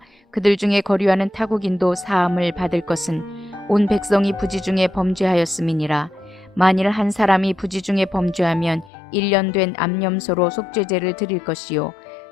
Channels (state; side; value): drops out; right; at 8.9 s